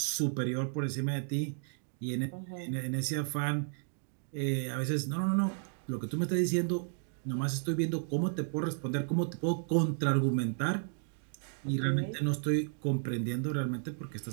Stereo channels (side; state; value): left; silent; digital silence